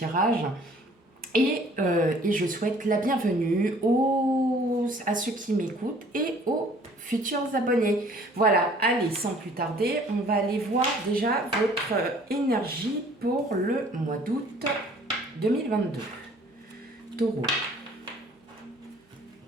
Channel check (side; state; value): both; normal; correlation 0.55